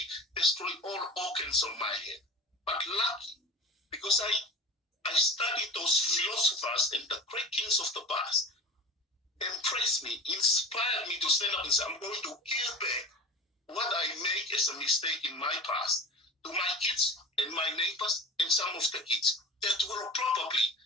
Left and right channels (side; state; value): both; normal; correlation 0.35